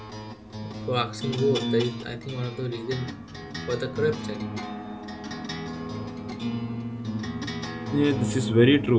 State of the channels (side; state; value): both; identical; correlation 1.00